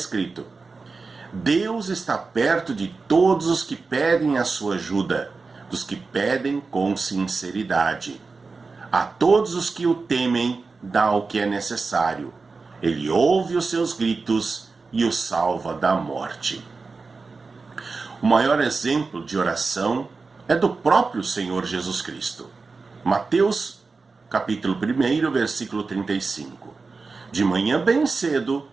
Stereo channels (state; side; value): quieter; left; 4.2 dB